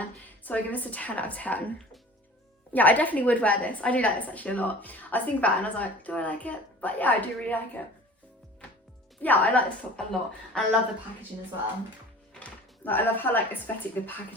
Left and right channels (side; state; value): both; normal; correlation 0.43